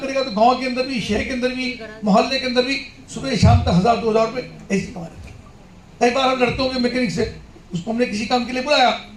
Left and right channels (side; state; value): both; identical; correlation 1.00